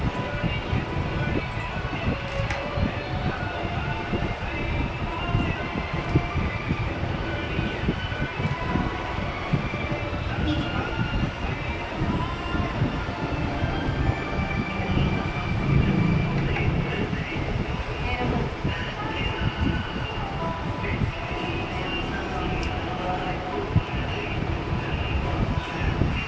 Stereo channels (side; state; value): both; identical; correlation 1.00